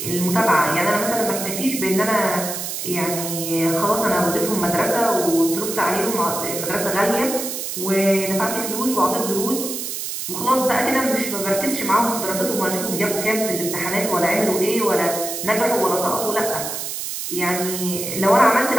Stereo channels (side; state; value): right; noise; hiss, 5 dB below the sound